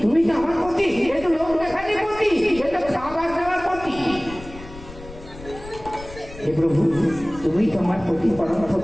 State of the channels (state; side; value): noise; left; rumble, 16 dB below the sound